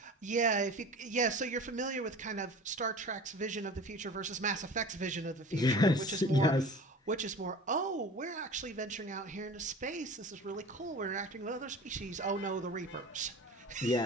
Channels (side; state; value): both; normal; correlation 0.38